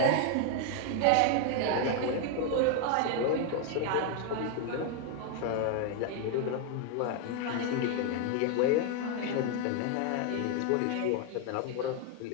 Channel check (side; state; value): both; different; correlation 0.00